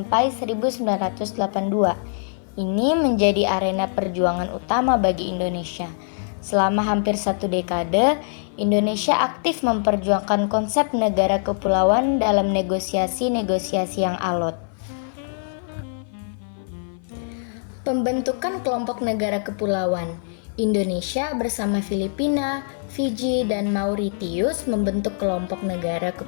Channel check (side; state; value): right; silent; 57 dB below the other